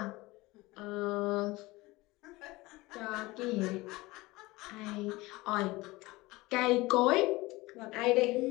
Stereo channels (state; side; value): quieter; right; 20.9 dB